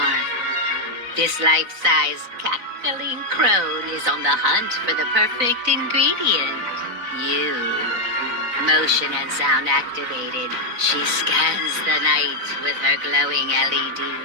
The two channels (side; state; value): left; late; 4.0 ms